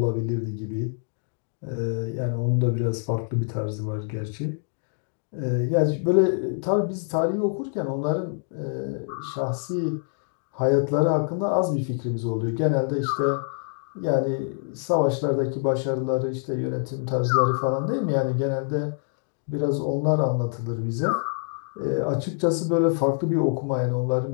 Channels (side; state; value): right; silent; 61 dB below the other